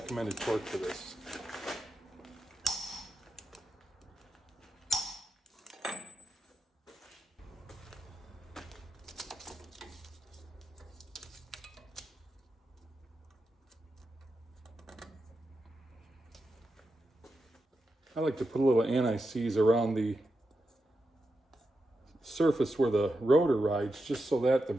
torque for this. I like to put a little anti-seize around the surface where the rotor rides, just so that the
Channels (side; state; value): both; normal; correlation 0.88